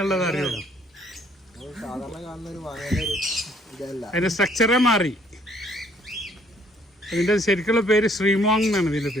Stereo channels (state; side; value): normal; both; correlation 0.63